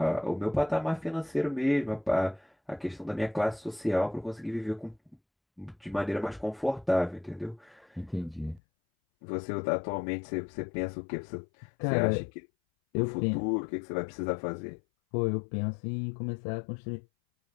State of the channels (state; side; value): drops out; right; at 8.6 s